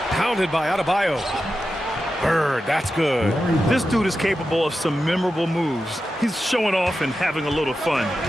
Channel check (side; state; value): both; normal; correlation 0.91